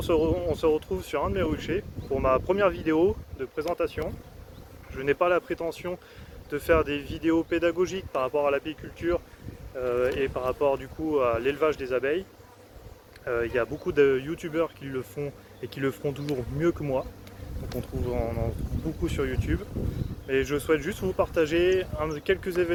se retrouve sur un de mes ruchers pour ma première vidéo de présentation. Je n'ai pas la prétention de faire des vidéos pédagogiques par rapport à l'apiculture et par rapport à l'élevage des abeilles. Il y a beaucoup de youtubeurs qui le font et qui le feront toujours mieux que moi. Donc on en trouve beaucoup sur YouTube. Et je souhaite juste vous partager quelques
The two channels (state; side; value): identical; both; correlation 1.00